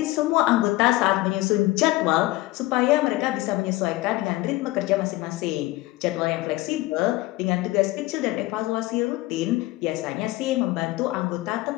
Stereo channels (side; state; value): right; quieter; 19.1 dB